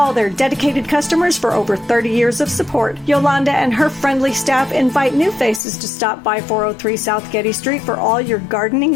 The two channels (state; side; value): drops out; right; at 5.6 s